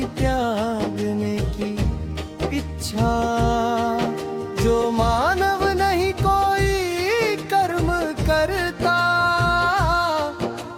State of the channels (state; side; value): identical; both; correlation 1.00